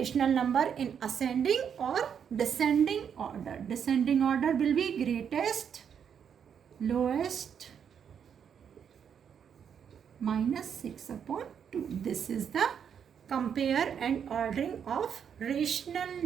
number in ascending or descending order. Descending order will be greatest, lowest, minus 6 upon 2. This is the compare and ordering of rational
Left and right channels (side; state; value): left; quieter; 7.8 dB